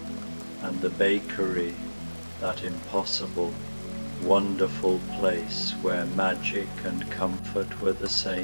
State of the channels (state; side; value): inverted; both; correlation -1.00